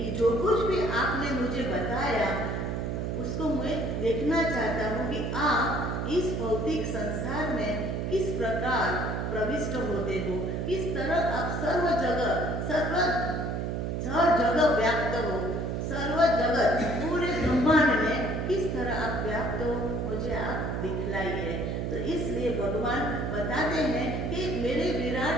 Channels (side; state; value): right; noise; hum, 1 dB below the sound